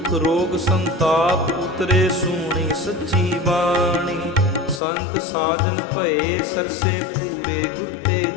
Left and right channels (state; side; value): drops out; right; at 4.8 s